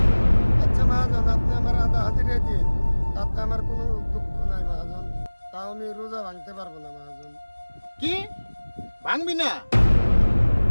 আচ্ছা মহাজন, আপনি আমার আধা হাজিরা দিন, তাতে আমার কোনো দুঃখ নাই মহাজন। তাও আমি রোজা ভাঙতে পারবো না মহাজন। কি ভাঙবি না?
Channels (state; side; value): inverted; both; correlation -1.00